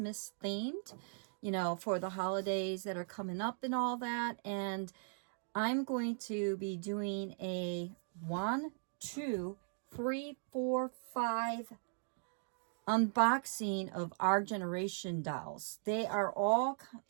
themed, for the holidays that are coming up and all that. And I'm going to be doing a 1, 2, 3, 4, 5 unboxing of our generation dolls. They are all,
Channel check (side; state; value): left; silent; digital silence